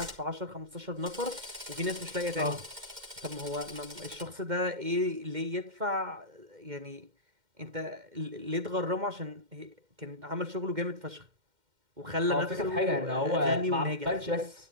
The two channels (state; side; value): late; left; 2.1 ms